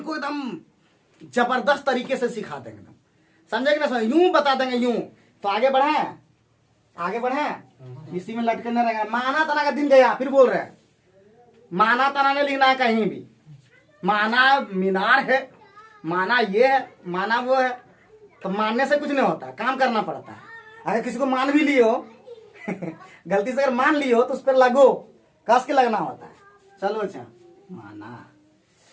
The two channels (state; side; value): identical; both; correlation 1.00